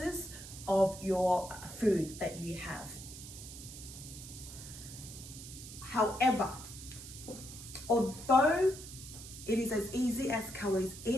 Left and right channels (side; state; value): right; noise; hiss, 13 dB below the sound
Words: of your food that you have. However, although it is as easy as calories